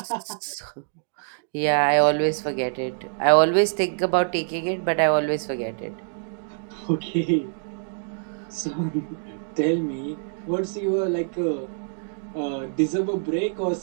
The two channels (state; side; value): silent; left; digital silence